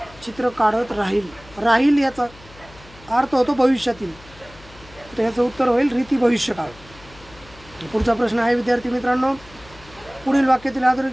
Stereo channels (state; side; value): noise; left; hum, 23 dB below the sound